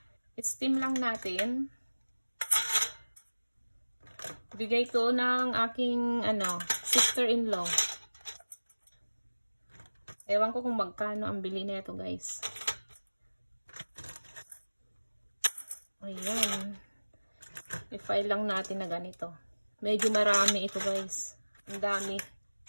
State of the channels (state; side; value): inverted; both; correlation -1.00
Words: I-steam lang natin. Bigay to ng aking sister-in-law. Ewan ko kung magkano ang bili nito guys. Ayan. I-file lang natin na ganito. Medyo marami ito guys. Ang dami.